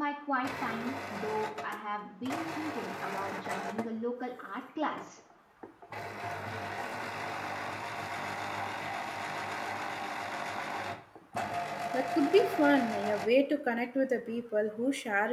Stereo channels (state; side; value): identical; both; correlation 1.00